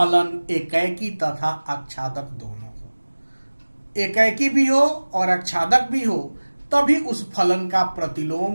एकाएकी तथा आच्छादक दोनों हो। एकाएकी भी हो और आच्छादक भी हो, तभी उस फलन का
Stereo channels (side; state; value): both; inverted; correlation -1.00